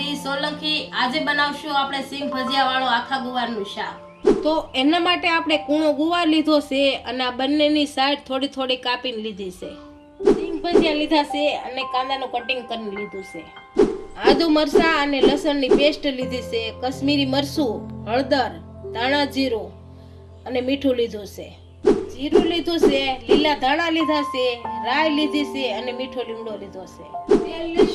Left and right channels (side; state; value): both; identical; correlation 1.00